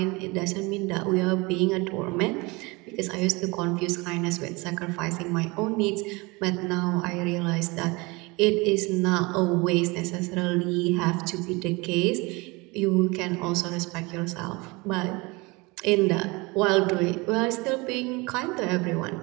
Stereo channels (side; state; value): left; quieter; 25.3 dB